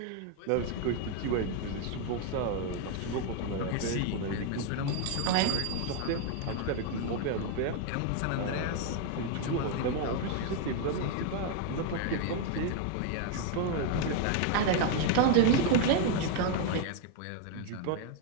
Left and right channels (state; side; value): different; both; correlation 0.00